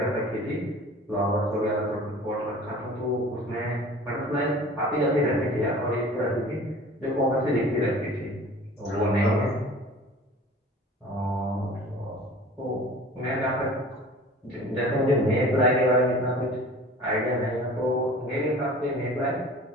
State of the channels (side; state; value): both; normal; correlation 0.44